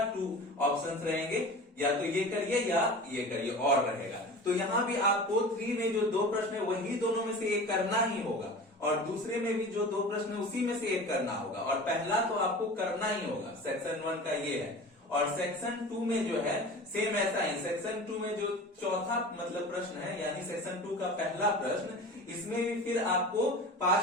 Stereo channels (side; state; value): both; normal; correlation 0.36